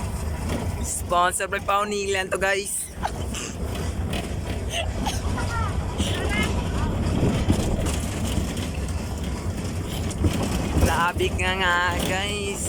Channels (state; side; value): identical; both; correlation 1.00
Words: Sponsor by Paunilan to guys. Grabe nga